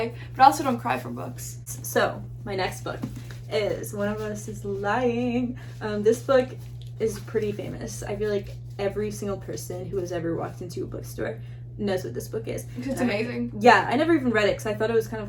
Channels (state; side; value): identical; both; correlation 1.00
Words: but I also don't cry from books. So my next book is One of Us is Lying. This book is pretty famous. I feel like every single person who has ever walked into a bookstore knows what this book is. It's amazing. I never even read it because I thought it was kind of